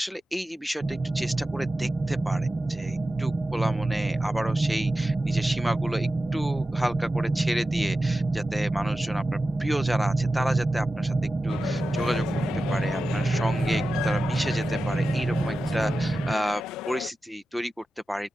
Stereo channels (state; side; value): normal; both; correlation 0.93